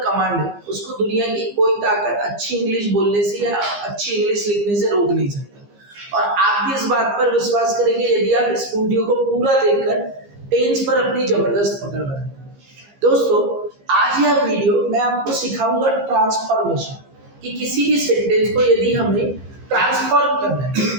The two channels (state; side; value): late; left; 15 ms